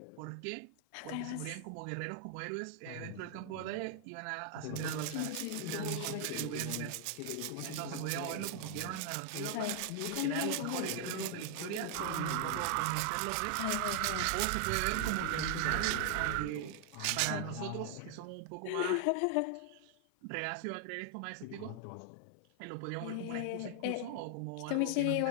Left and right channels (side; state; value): both; different; correlation 0.00